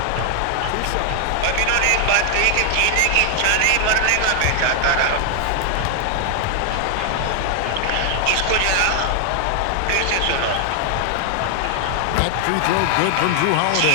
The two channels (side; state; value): both; different; correlation 0.00